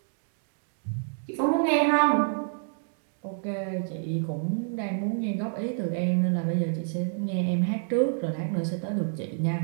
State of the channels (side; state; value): left; silent; digital silence